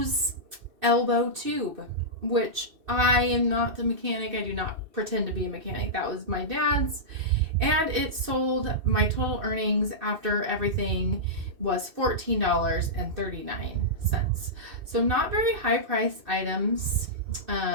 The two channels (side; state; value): left; late; 2.6 ms